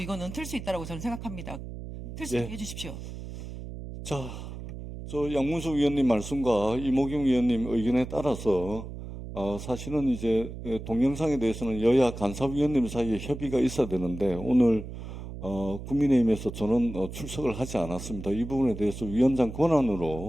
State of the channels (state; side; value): noise; right; hum, 10 dB below the sound